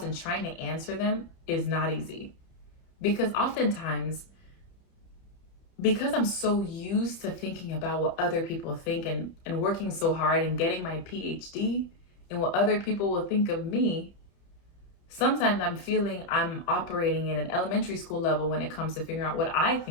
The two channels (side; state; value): right; late; 30 ms